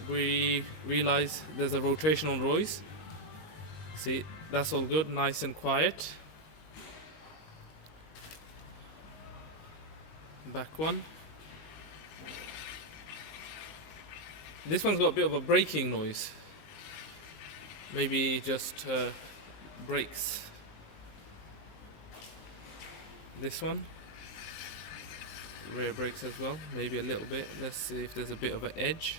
we realized there's a rotational noise. See, that's all good, nice and quiet. Back one. This one's got a bit of a braking noise. Maybe just brakes. This one, rear brakes as well. Maybe a little bit. Let's see if there's a bit of an edge.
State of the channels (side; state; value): right; late; 19 ms